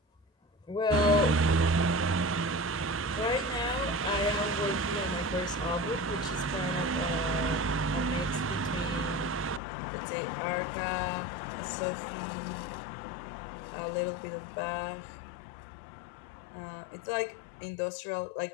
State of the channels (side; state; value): right; drops out; at 9.6 s